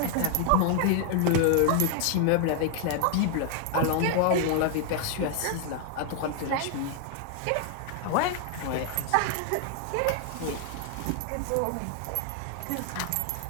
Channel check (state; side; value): different; both; correlation 0.00